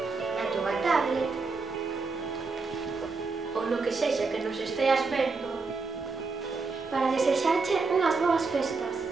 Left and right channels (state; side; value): quieter; left; 4.2 dB